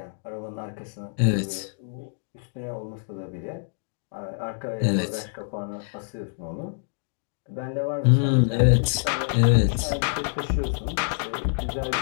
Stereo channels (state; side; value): silent; right; digital silence